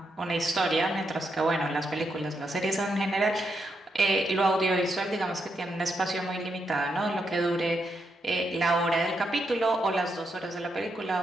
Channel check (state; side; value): normal; both; correlation 0.81